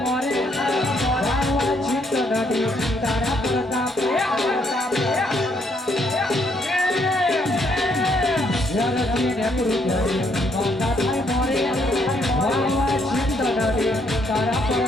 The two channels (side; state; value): both; normal; correlation 0.71